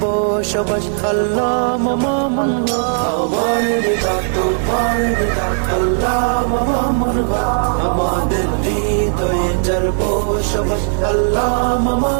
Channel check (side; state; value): left; silent; 60 dB below the other